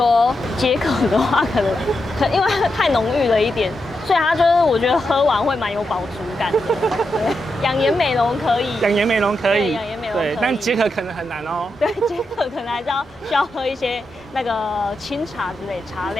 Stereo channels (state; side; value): normal; both; correlation 0.86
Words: 解渴的话，可能因为太浓郁了一点，所以它就是我觉得喝完会蛮有饱足感的。养颜美容可以，养颜美容可以，养颜美容可以，对，但解渴可能很难哦。对，解渴可能还是需要喝一些那个清茶之类茶